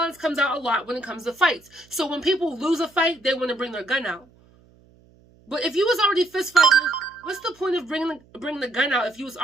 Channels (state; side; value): noise; right; hum, 29 dB below the sound